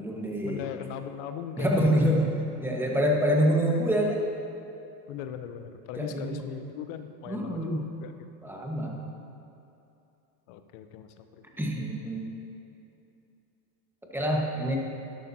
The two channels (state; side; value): normal; both; correlation 0.53